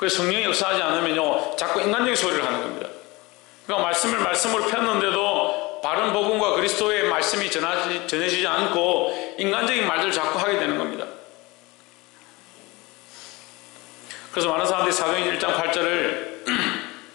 성령이 역사하지 않으면요, 자꾸 인간적인 소리를 하는 겁니다. 그러니까 말씀으로 폈는데도 바른 복음과 그리스도의 말씀이 전해지지 않고 인간적인 말들을 자꾸 하게 되는 겁니다. 그래서 많은 사람들이 사도행전 1장 8절을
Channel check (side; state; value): right; quieter; 23.0 dB